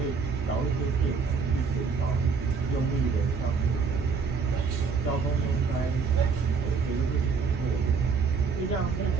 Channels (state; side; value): quieter; left; 5.2 dB